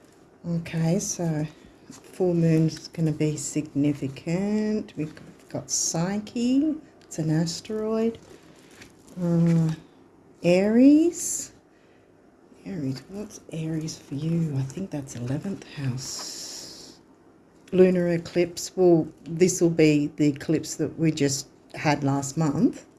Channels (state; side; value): identical; both; correlation 1.00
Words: Okay, so full moon's going to be significant. We've got Psyche, it's an asteroid. Aries, what's Aries for you? I think that's 11th house. Lunar eclipse, well, this will be the eclipse that we just had last month,